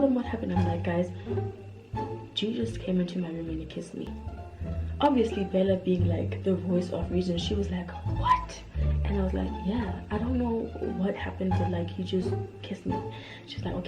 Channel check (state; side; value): identical; both; correlation 1.00